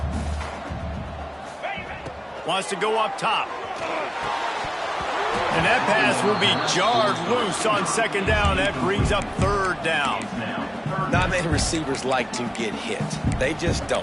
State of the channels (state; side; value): identical; both; correlation 1.00